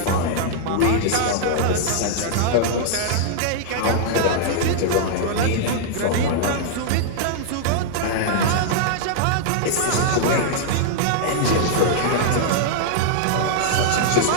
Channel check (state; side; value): different; both; correlation -0.01